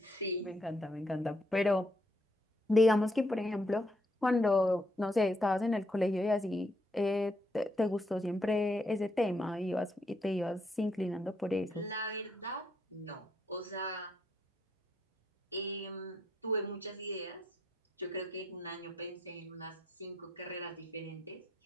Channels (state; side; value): normal; both; correlation 0.75